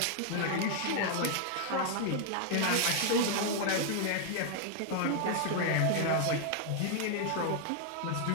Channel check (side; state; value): both; different; correlation 0.00